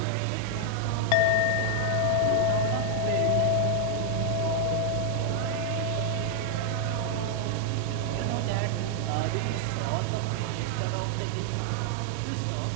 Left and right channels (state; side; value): different; both; correlation 0.00